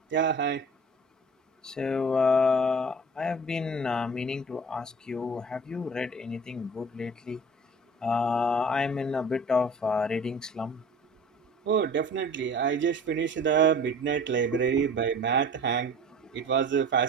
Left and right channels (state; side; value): normal; both; correlation 0.42